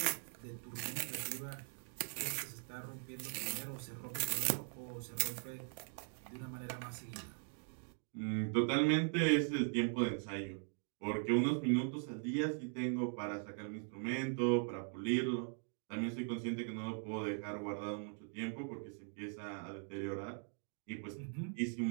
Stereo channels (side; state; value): left; silent; 51 dB below the other